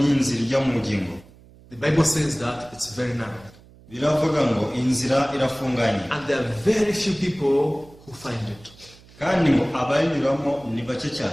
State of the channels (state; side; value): noise; right; hum, 24 dB below the sound